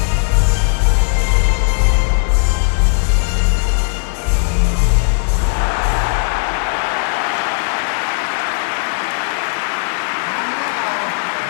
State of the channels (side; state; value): right; silent; 63 dB below the other